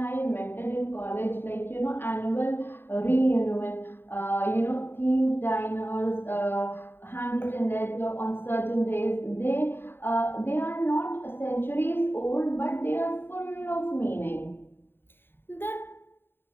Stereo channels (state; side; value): late; right; 0.10 ms